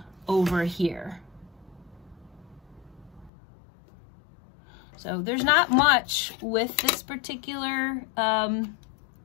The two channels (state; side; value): drops out; right; at 3.3 s